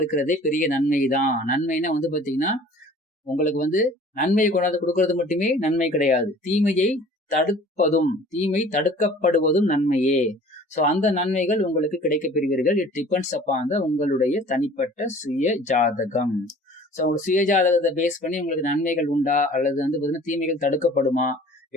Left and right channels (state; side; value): normal; both; correlation 0.48